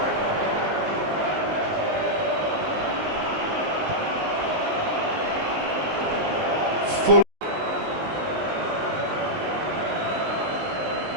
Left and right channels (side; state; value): left; late; 19 ms